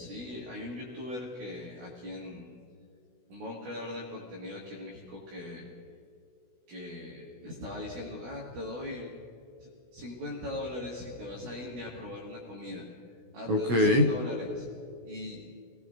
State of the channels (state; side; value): late; left; 16 ms